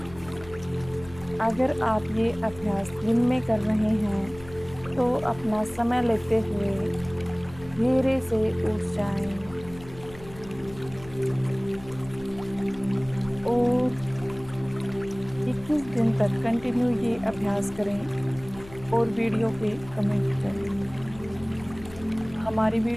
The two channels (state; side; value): noise; left; hum, 19 dB below the sound